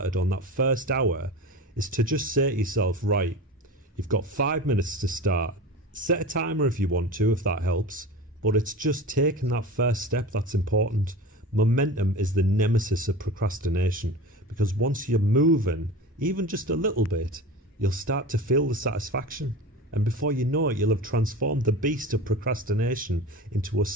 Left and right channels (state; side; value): normal; both; correlation 0.32